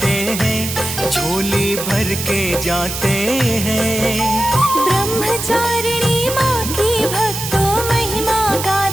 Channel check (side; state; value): right; noise; hiss, 6 dB below the sound